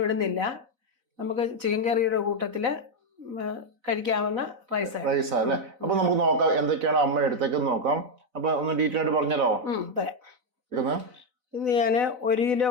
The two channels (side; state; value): left; late; 4.0 ms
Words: ഇടുന്നില്ല. നമുക്ക് ചിക്കൻ കറിയുടെ കൂട്ടത്തില് കഴിക്കാവുന്ന റൈസ് അല്ലേ? അപ്പൊ നമുക്ക് നോക്കാം എന്തൊക്കെയാണ് അമ്മ എടുത്തേക്ക് നോക്കാം. അപ്പൊ ഒന്ന് ഡീറ്റെയിൽ ആയിട്ട് പറഞ്ഞല്ലോ. ഇന്ന് ഞാൻ 1 കിലോ